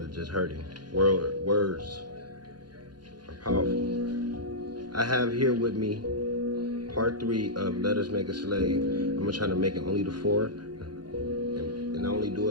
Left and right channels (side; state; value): left; late; 0.71 ms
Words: just hurting. Words are powerful. I have here with me part 3 of Let Us Make a Slave. I'm gonna try to make it only to 4. And I only do